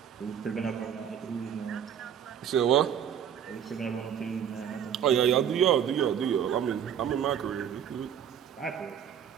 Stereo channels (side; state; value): left; quieter; 8.8 dB